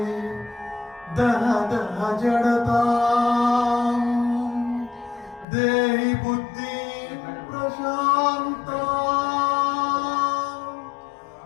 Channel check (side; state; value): right; drops out; at 5.5 s